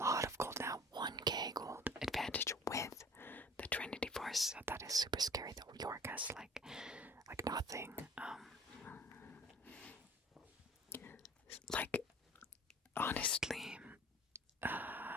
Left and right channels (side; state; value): both; normal; correlation 0.47